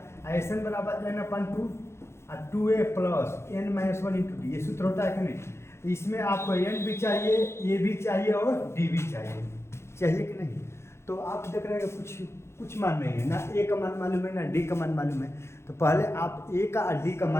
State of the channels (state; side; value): late; right; 0.13 ms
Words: एस एन बराबर n/2 और 2a plus n-1 into D. ये सूत्र होता है कि नहीं? तो इसमें आपको n भी चाहिए, ए भी चाहिए और डी भी चाहिए कि नहीं? तो आप देख रहे हैं कुछ मान नहीं है ना, ए का मान मालूम है ना डी का मान मालूम है। तो पहले आप ए का और डी का